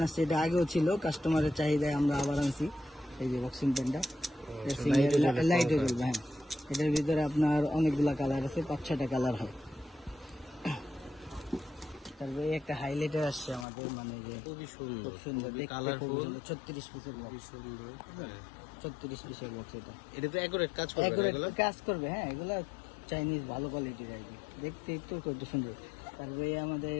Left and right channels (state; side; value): drops out; right; at 13.7 s